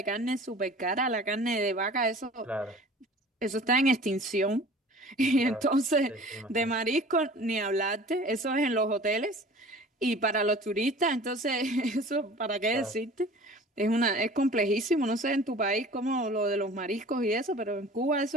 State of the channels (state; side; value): normal; both; correlation 0.44